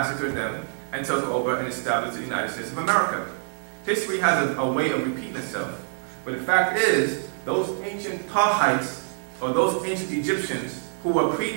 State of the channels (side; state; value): left; silent; digital silence